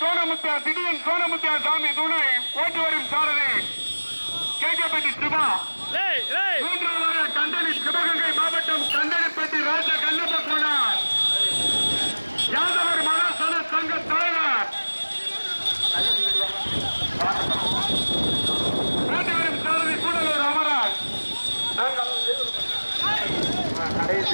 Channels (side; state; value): both; inverted; correlation -1.00